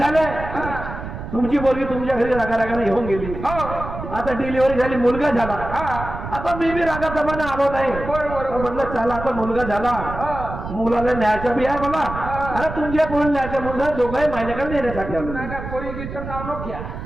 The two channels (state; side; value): noise; right; rumble, 9 dB below the sound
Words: तुमची पोरगी तुमच्या घरी रागाने घेऊन गेली. आता डिलिव्हरी झाली, मुलगा झाला. आता मी बी रागाप्रमाणे आलो नाही, म्हटलं चला आता मुलगा झाला, मुलाला न्यायचा बी आहे मला. अरे तुमच्या पोरी न्यायच्या मुलगा दोघंही माझ्याकडे नेण्यासाठी आलो. पोरीचं नाव नको घ्या.